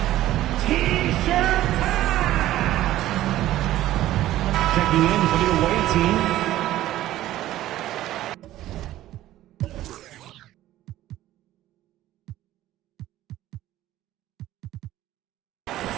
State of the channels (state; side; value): quieter; left; 14.3 dB